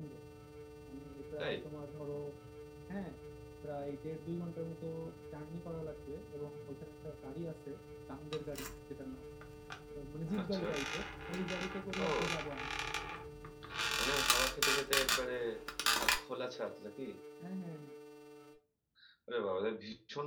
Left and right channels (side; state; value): both; identical; correlation 1.00